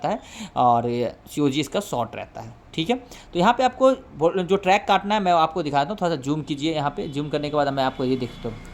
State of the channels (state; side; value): identical; both; correlation 1.00